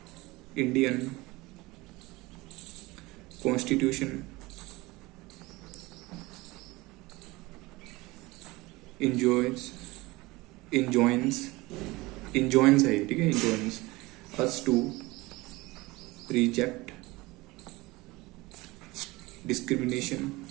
इंडियन कॉन्स्टिट्यूशन इंजॉइंस है, ठीक है, enjoins us to reject discrimination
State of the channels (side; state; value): left; quieter; 21.6 dB